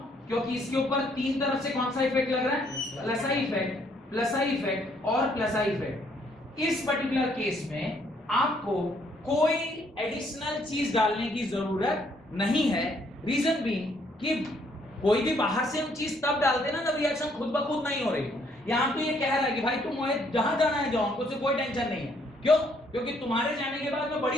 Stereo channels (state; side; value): normal; both; correlation 0.68